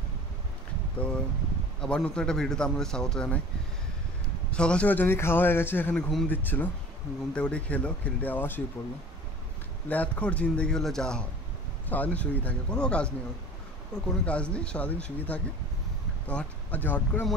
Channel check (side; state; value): both; normal; correlation 0.44